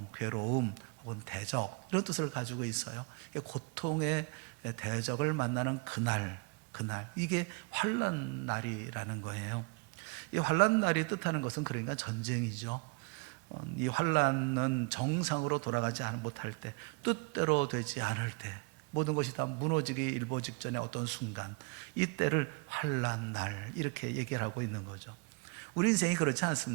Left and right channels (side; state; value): left; quieter; 31.1 dB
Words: 괴로움 혹은 대적 이런 뜻을 가지고 있어요. 고통의 대적을 만나는 그날 이게 환난 날이라는 거예요. 이 환난 날이 뜻하는 것은 그러니까 전쟁이죠. 이 환난은 정상으로 돌아가지 못할 때, 뜻대로 되지 않을 때, 모든 것이 다 무너지기 일보 직전의 어떤 순간, 이때를 환난 날 이렇게 얘기를 하고 있는 거죠. 우리 인생이 그렇지